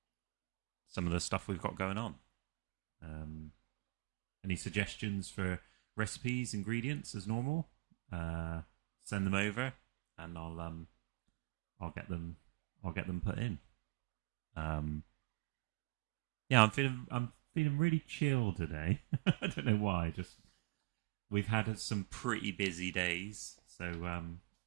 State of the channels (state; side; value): quieter; left; 24.5 dB